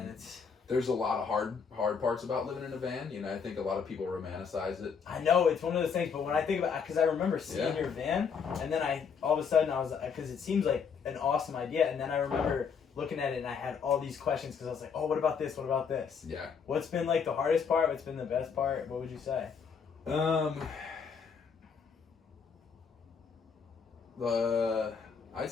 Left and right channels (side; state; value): right; quieter; 6.2 dB